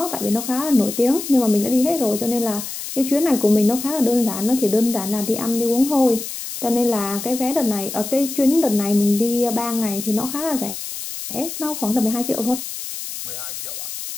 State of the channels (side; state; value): left; noise; hiss, 8 dB below the sound